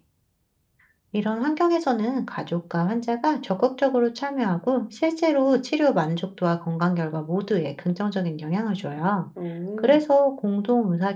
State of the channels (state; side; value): identical; both; correlation 1.00